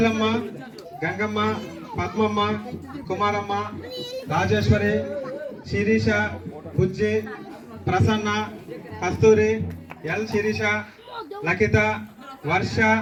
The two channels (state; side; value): identical; both; correlation 1.00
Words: గంగమ్మ, పద్మమ్మ, కుమారమ్మ, రాజేశ్వరి, శిరీష, బుజ్జి, ప్రసన్న, కస్తూరి, L Sirisha, లకిత, వర్ష,